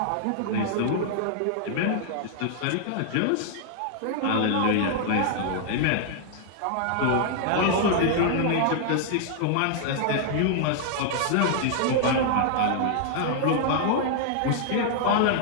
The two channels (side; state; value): both; different; correlation -0.01